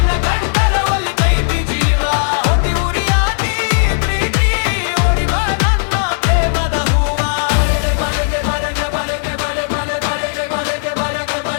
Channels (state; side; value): silent; right; digital silence